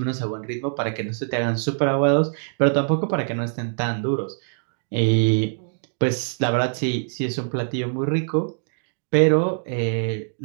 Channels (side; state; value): left; silent; digital silence